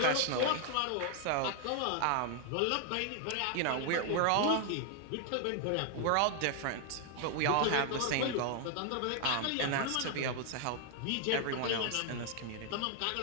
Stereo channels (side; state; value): both; different; correlation 0.00